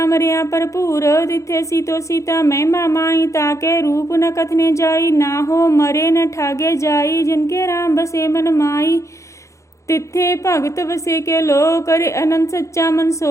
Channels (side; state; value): right; late; 0.15 ms